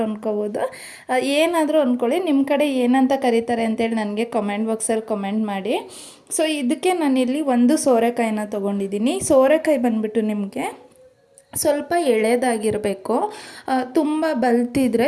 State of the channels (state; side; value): identical; both; correlation 1.00